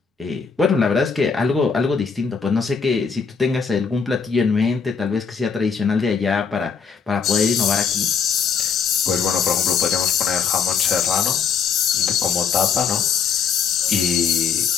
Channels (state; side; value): quieter; right; 6.1 dB